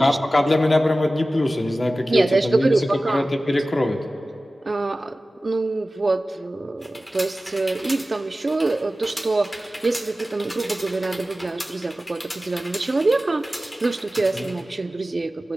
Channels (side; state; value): both; normal; correlation 0.96